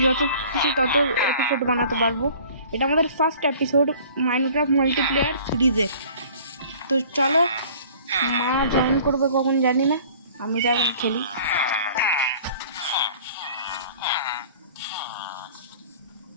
যত খুশি তত এপিসোড বানাতে পারবো। এটা আমাদের ফার্স্ট এপিসোড মাইনক্রাফট মাল্টিপ্লেয়ার সিরিজের। তো চলো, মা জয়েন করবে কখন জানি না, আমি যাবো খেলি।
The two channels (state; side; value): inverted; both; correlation -0.49